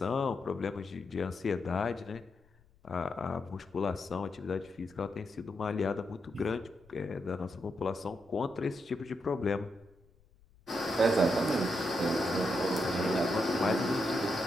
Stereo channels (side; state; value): left; noise; rumble, 29 dB below the sound